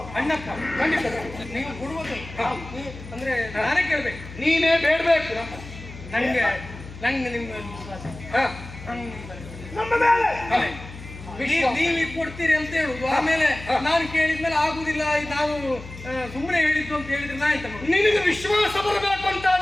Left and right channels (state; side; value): noise; left; hum, 14 dB below the sound